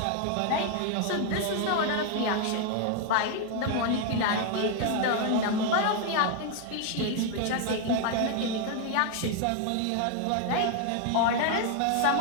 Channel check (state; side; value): different; both; correlation 0.00